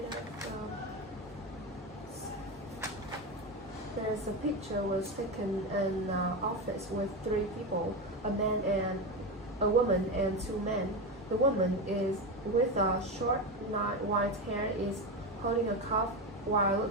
there's a picture was taken in an office with three people, a woman and two men. The woman is with a short white hair is holding a cup while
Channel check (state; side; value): normal; both; correlation 0.17